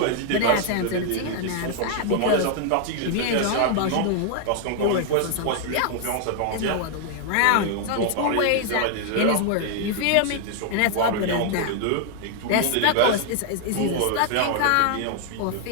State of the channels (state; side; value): different; both; correlation 0.00